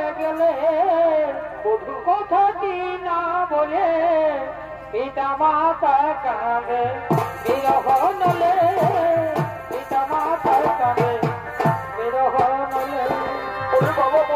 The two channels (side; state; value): both; identical; correlation 1.00